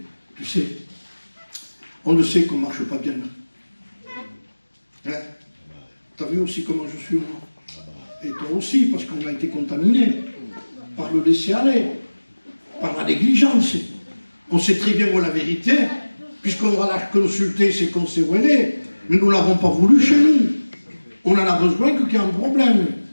Tu sais, on le sait qu'on ne marche pas bien. Hein? Tu as vu aussi comment je suis, moi. Et toi aussi, parce qu'on a été contaminé par le laisser-aller, par la négligence. On sait très bien où est la vérité, puisqu'on va la consulter, c'est qu'on sait où elle est. Mais nous ne l'avons pas voulu chez nous. On en a besoin qu'il y ait un problème.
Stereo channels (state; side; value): inverted; both; correlation -1.00